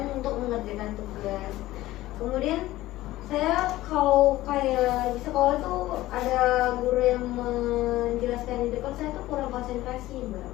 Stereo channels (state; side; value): quieter; right; 16.4 dB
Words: untuk mengerjakan tugas. Kemudian saya kalau kayak di sekolah tuh ada guru yang menjelaskan di depan, saya tuh kurang konsentrasi Mbak.